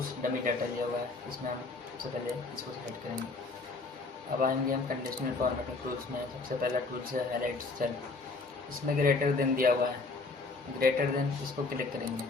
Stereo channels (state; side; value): quieter; right; 3.7 dB